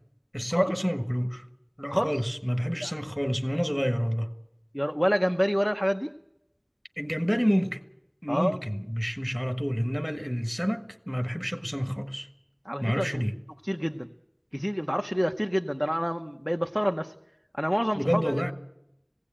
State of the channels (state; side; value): identical; both; correlation 1.00